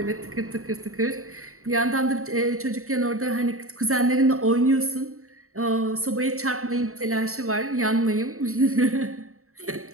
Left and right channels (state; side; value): late; left; 0.63 ms